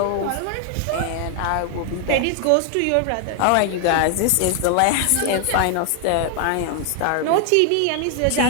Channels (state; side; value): different; both; correlation 0.00